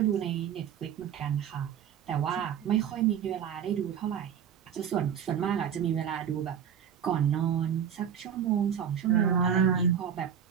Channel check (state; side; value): quieter; left; 8.4 dB